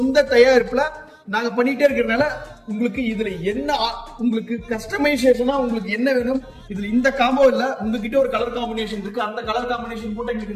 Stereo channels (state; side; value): identical; both; correlation 1.00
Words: தயாரிப்புல நாங்க பண்ணிட்டே இருக்கிறதுனால உங்களுக்கு இதுல என்ன உங்களுக்கு கஸ்டமைசேஷனா உங்களுக்கு என்ன வேணும், இதுல இந்த காம்போ இல்ல உங்ககிட்ட ஒரு கலர் காம்பினேஷன் இருக்கு, அந்த கலர் காம்பினேஷன் போட்டு